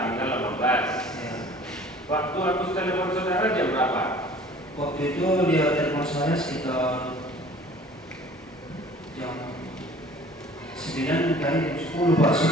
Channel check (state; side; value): normal; both; correlation 0.49